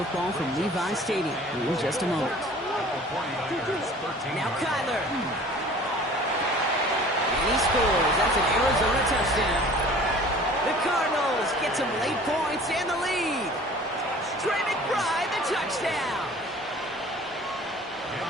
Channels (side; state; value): both; normal; correlation 0.47